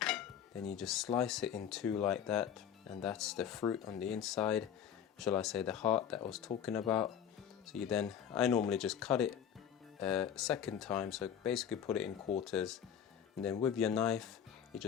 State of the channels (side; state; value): right; quieter; 8.7 dB